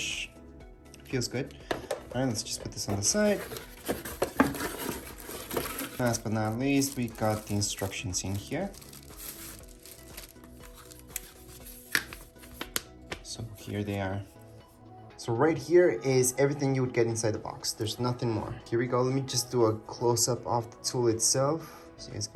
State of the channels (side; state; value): both; identical; correlation 1.00